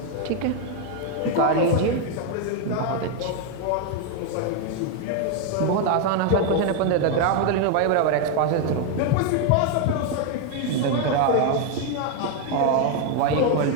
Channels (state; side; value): different; both; correlation 0.01